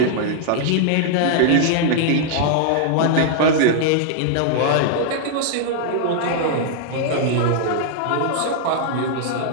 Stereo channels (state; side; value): different; both; correlation -0.01